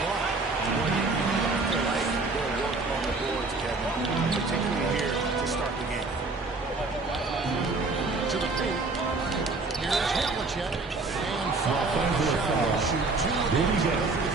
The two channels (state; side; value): quieter; left; 3.6 dB